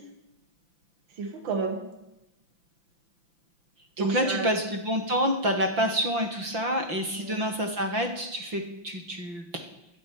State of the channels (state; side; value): late; left; 5.8 ms